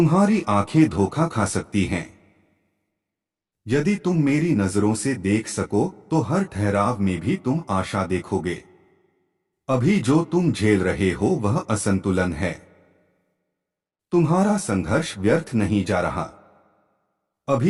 आंखें धोखा खा सकती हैं। यदि तुम मेरी नजरों से देख सको तो हर ठहराव में भी तुम आशा देखोगे। अभी जो तुम झेल रहे हो वह असंतुलन है। तुम्हारा संघर्ष व्यर्थ नहीं जा रहा।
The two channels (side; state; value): both; identical; correlation 1.00